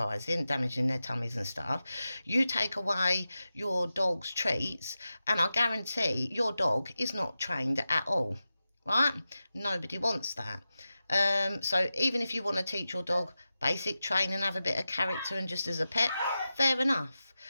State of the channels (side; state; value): both; inverted; correlation -0.93